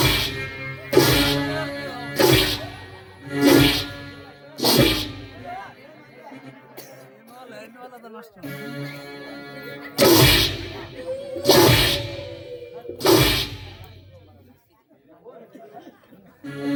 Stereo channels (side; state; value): both; identical; correlation 1.00